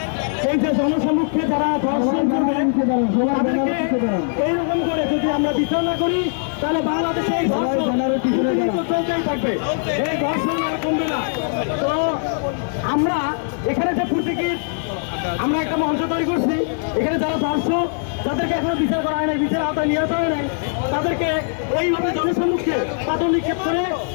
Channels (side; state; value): right; silent; digital silence